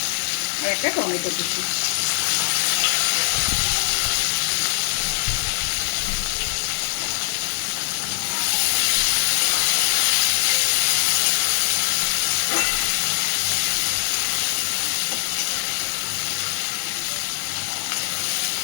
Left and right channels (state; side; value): silent; right; digital silence